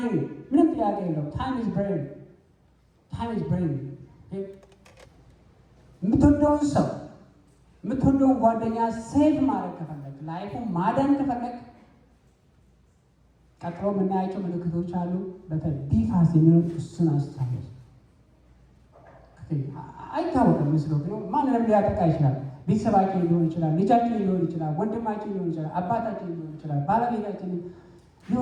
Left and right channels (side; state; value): both; identical; correlation 1.00